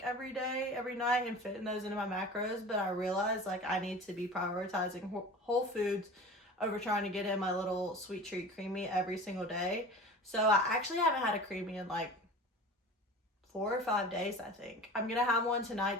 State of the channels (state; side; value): normal; both; correlation 0.37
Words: every day, every night, and fitting those into my macros, but I realized I need to be prioritizing whole foods over trying to get in my little sweet treat creamy every single day. So I actually haven't had a creamy in 4 or 5 days, I think. I'm gonna have one